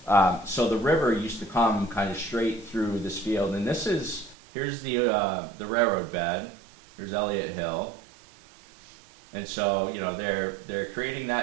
so the river used to come kind of straight through this field, and here's the railroad bed. Here's Elliott Hill, and so they're creating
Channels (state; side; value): drops out; left; at 4.4 s